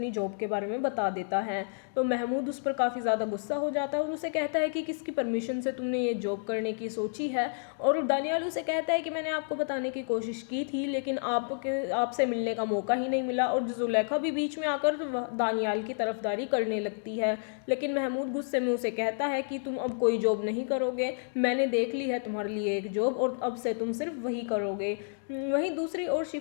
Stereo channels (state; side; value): silent; right; digital silence